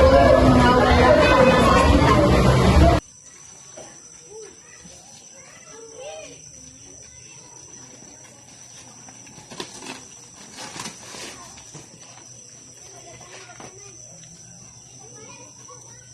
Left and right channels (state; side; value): identical; both; correlation 1.00